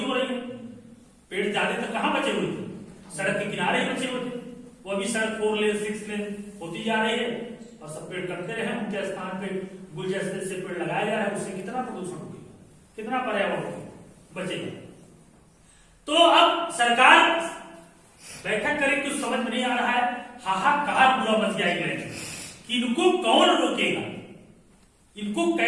हो रही है, पेड़ ज्यादा तो कहां बचे हुए थे, सड़क के किनारे ही बचे हुए थे। वो अभी सड़क 4 लेन 6 लेन होती जा रही है और सब पेड़ कटते रहे, उनके स्थान पे गुलदस्ते से पेड़ लगाया जा रहा है। उससे कितना प्रदूषण होगा, कितना पर्यावरण बचेगा। तो अब सरकार बैठक करे, कुछ समझ में नहीं आ रहा है। हाहाकार पूरा मच गया है कि इनको कौन रोकेगा, इनको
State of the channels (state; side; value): identical; both; correlation 1.00